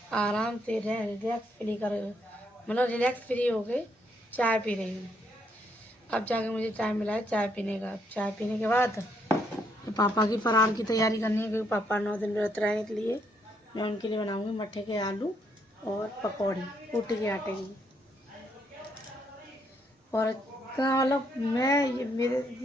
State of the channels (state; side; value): normal; both; correlation 0.73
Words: आराम से रिलैक्स फ्री मतलब रिलैक्स फ्री हो गए चाय पी रही हूँ। अब जाके मुझे चाय मिला है चाय पीने का। चाय पीने के बाद तो पापा की फरार की तैयारी करनी है, क्योंकि पापा 9 दिन व्रत रहने के लिए मैं उनके लिए बनाऊँगी मट्ठे के आलू और पकौड़ी ऊटी के आटे की। और इतना मतलब मैं ये मेरे